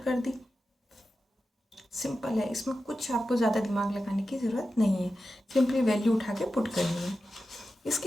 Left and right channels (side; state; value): both; normal; correlation 0.92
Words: दी, सिंपल है, इसमें कुछ आपको ज़्यादा दिमाग लगाने की ज़रूरत नहीं है, सिंपली वैल्यू उठा के पुट करनी है।